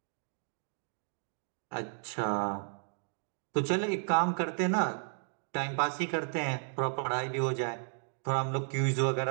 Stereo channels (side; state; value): left; silent; 55 dB below the other